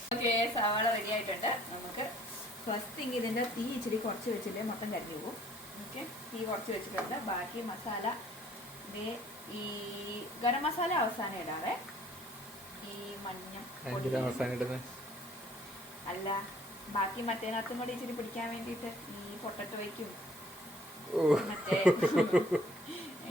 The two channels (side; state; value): both; normal; correlation 0.58